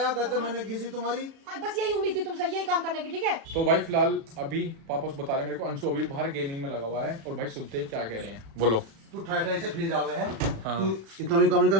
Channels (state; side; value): late; left; 36 ms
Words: गजर मैंने घिसी तुम्हारी। हाँ, बस यही उम्मीद थी तुमसे, यही काम करने की, ठीक है? तो भाई फिलहाल अभी पापा बता रहे हैं मेरे को, अंशु अभी बाहर गेमिंग में लगा हुआ है। और भाई सुनते हैं क्या कह रहे हैं, बोलो। तू ठाई से फ्री जावे है। हाँ। तू इतना भी काम नहीं कर